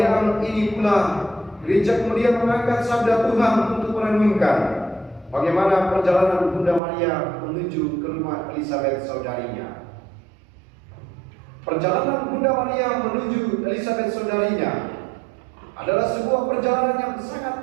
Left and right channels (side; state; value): left; drops out; at 6.8 s